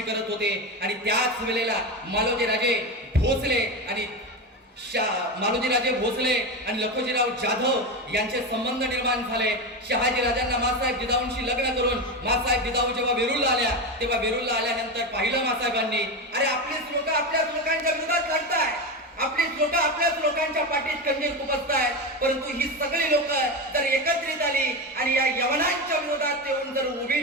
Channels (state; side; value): normal; both; correlation 0.18